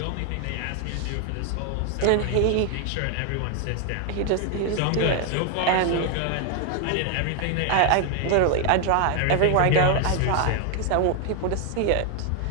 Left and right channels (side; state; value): both; different; correlation 0.01